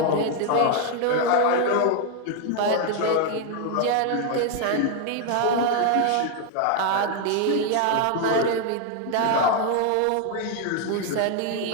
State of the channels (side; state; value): both; different; correlation 0.01